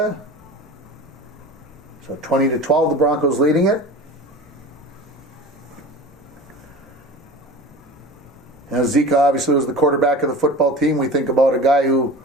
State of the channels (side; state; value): both; normal; correlation 0.36